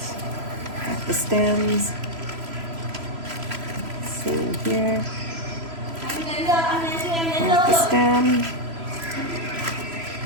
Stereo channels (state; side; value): late; left; 3.0 ms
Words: have the stems. Same here. Have the stem.